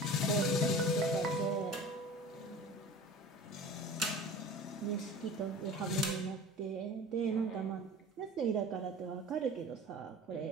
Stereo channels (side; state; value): both; normal; correlation 0.39